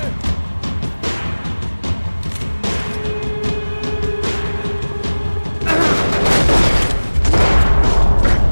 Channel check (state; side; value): inverted; both; correlation -1.00